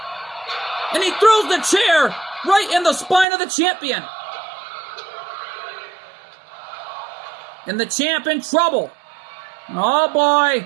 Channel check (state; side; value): drops out; left; at 3.2 s